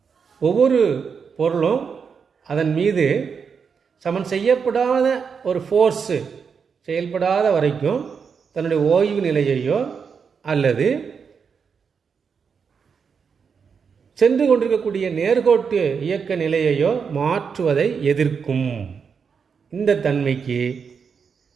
ஒவ்வொரு பொருளும் அதன் மீது சமன் செய்யப்படாத ஒரு ஃபோர்ஸு செயல்படாத வரைக்கும் தன்னுடைய ஓய்வு நிலையையோ அல்லது சென்று கொண்டிருக்கக்கூடிய நேர்கோட்டு இயக்க நிலையையோ மாற்றுவதை எதிர்க்கும். இந்த தன்மைக்கு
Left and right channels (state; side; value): quieter; left; 6.2 dB